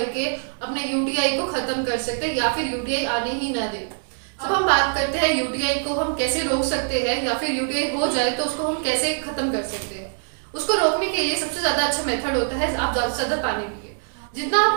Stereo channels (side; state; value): left; silent; digital silence